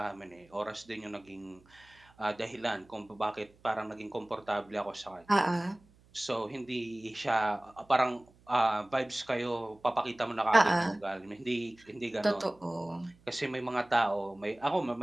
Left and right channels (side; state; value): right; noise; hum, 29 dB below the sound